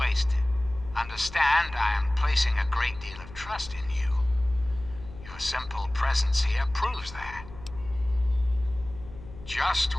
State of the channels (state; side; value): noise; left; hum, 16 dB below the sound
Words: Understand, I am placing a great deal of trust in you. Your simple presence here proves that. Just